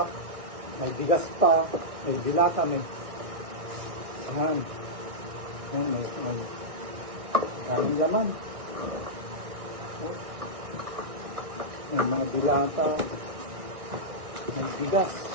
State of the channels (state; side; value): late; left; 1.6 ms